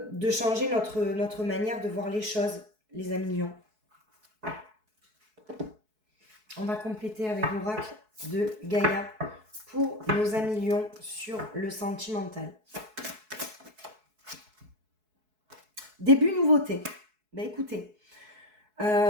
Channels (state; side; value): late; left; 4.7 ms